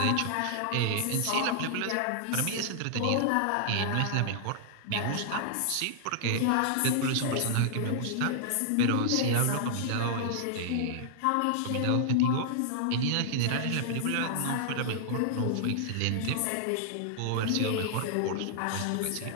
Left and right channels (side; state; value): both; different; correlation -0.01